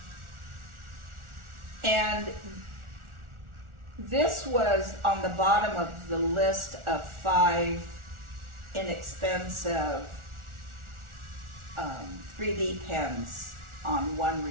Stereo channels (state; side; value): late; left; 1.4 ms